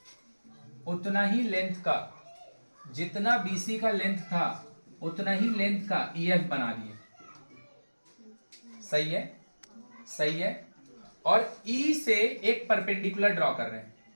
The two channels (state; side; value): inverted; both; correlation -1.00